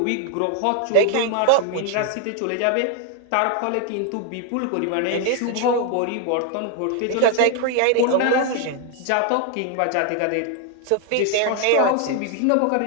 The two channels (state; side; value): different; both; correlation 0.01